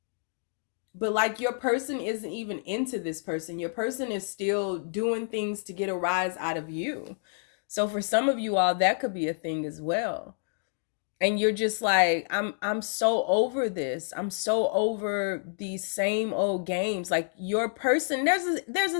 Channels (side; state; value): right; silent; digital silence